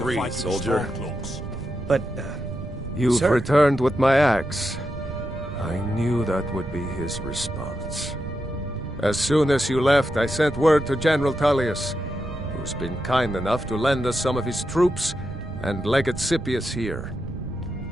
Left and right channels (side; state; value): right; noise; rumble, 10 dB below the sound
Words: soldier. But, You've sir? returned with my axe. I knew that would be his response. As soon as you left, I sent word to General Tullius, who's been kind enough to lend us some of his troops, and Legate Scipius here.